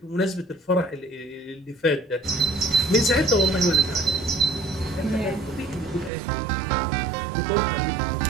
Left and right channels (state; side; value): drops out; left; at 6.1 s